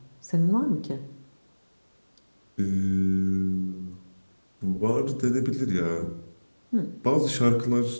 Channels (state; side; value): inverted; both; correlation -1.00